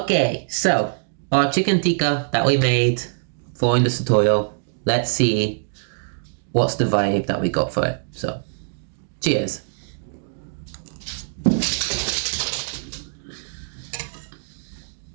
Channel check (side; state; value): left; silent; digital silence